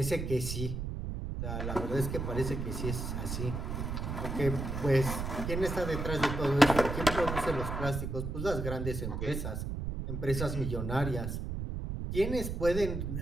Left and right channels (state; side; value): noise; right; rumble, 4 dB below the sound